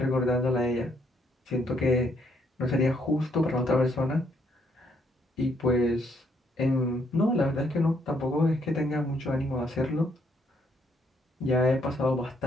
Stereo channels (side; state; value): both; normal; correlation 0.72